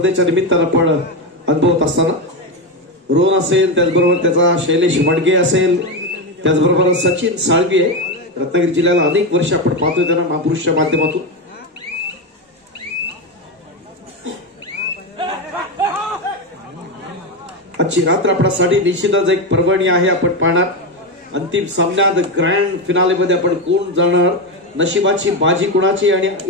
निमित्तानं आपण अनुभवत असताना रोहन असेल, त्याचबरोबर त्याचा शैलेश वडगे असेल, त्याचबरोबर सचिन साळवी आहे. रत्नागिरी जिल्ह्याला अनेक वर्ष आपण पाहतोय त्यांना महापुरुषच्या माध्यमातून. आजची रात्र आपल्यासाठी निश्चितच एक पर्वणी आहे. आपण पाहणार अंतिम सामन्यात ग्रँड फिनालेमध्ये आपण कोण जाणार, नशिबाची बाजी कुणाची आणि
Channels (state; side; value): normal; both; correlation 0.12